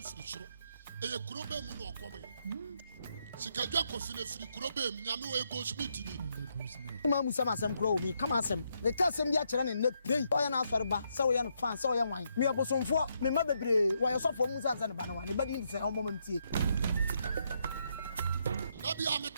soro eye kurobe mu no okome sikadwa kofi na firi kurobe mu nyame we go smith ni ma musa masem kuro mi kama asem ne ka asem bi a kire ne na pray o ya na asore ba se wo ya no fan se wo ya wan me Bosomfo me ma bebre wo ya sofo musa ansa ne ba na wan ne ba di se o mo mamtie na bi am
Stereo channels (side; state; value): both; inverted; correlation -0.77